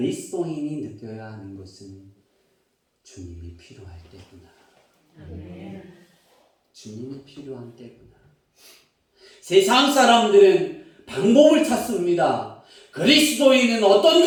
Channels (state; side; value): identical; both; correlation 1.00